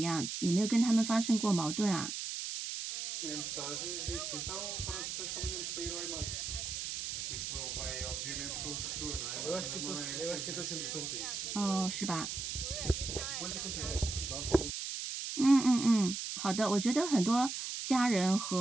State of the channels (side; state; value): right; noise; hiss, 4 dB below the sound